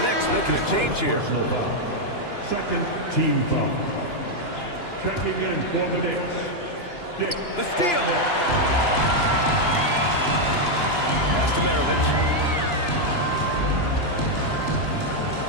Knicks making a change here. Second team foul. Checking in for the Knicks. The steal. Pass to Maravich.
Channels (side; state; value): right; late; 2.9 ms